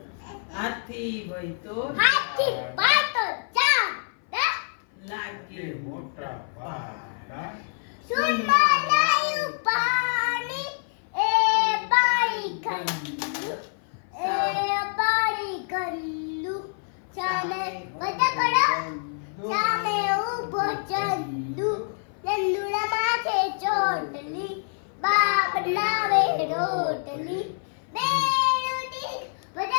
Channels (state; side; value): silent; right; 56 dB below the other